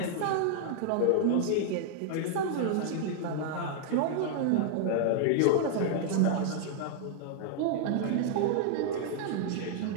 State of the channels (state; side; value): different; both; correlation -0.01